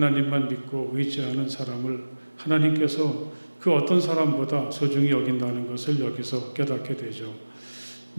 믿고 의지하는 사람을 하나님께서 그 어떤 사람보다 소중히 여긴다는 것을 여기서 깨닫게 되죠.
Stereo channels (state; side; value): inverted; both; correlation -1.00